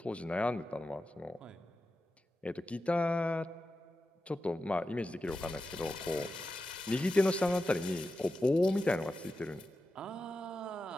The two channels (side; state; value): both; normal; correlation 0.91